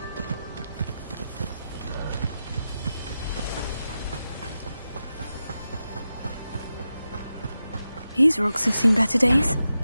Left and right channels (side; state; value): both; inverted; correlation -0.90